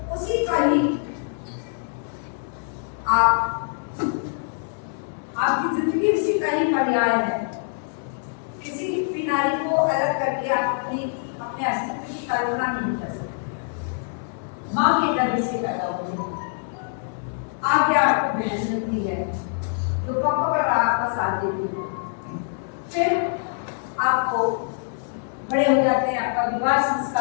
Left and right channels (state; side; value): silent; right; digital silence